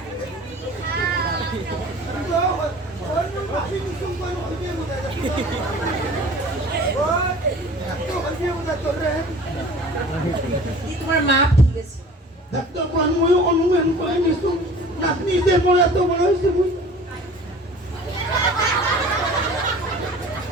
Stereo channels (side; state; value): both; normal; correlation 0.44